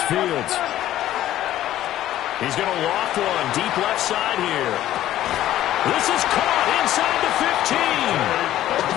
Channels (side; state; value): right; quieter; 13.3 dB